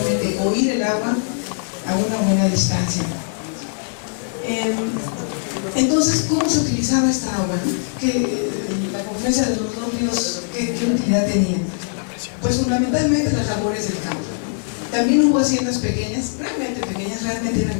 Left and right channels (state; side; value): silent; right; digital silence